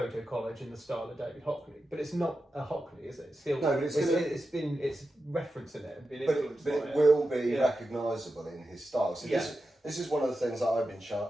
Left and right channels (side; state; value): both; normal; correlation 0.90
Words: collage in the style of David Hockney, but it's not a Hockney, is it? It's still, no, but it's referencing it and been but influenced by it will be recognisable in his style. So Yeah. this is one of the things that I've been